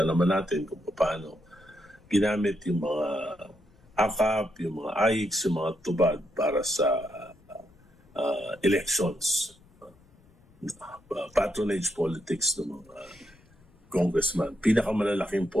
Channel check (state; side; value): noise; left; rumble, 29 dB below the sound